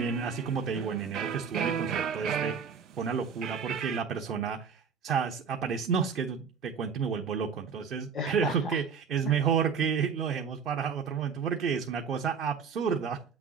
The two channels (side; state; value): left; quieter; 6.2 dB